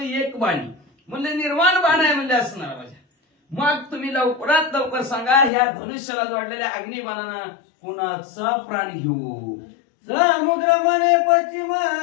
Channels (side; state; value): right; drops out; at 5.5 s